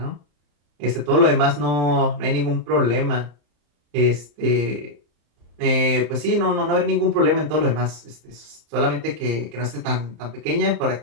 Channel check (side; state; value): left; late; 34 ms